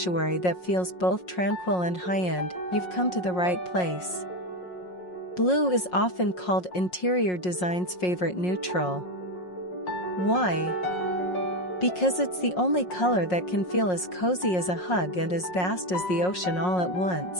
that feels both tranquil and high-end, you've come to the right place. Blue is often called interior design's favorite neutral. Why? Because it's the only color that can feel as cozy as a hug and as vast as the ocean all at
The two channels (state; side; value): late; right; 5.5 ms